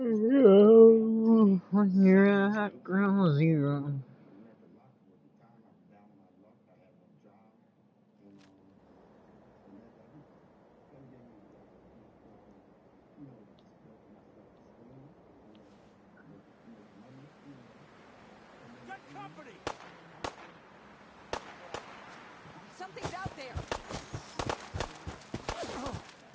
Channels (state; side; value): identical; both; correlation 1.00